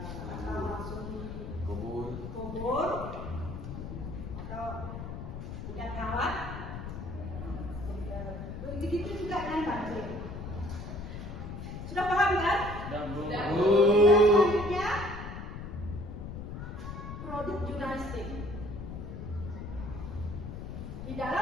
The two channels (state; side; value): noise; left; rumble, 8 dB below the sound